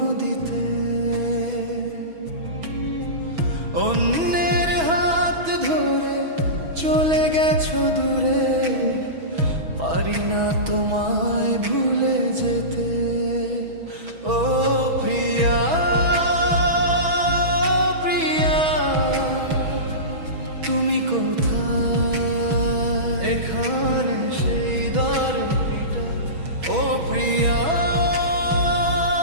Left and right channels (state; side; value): late; left; 6.2 ms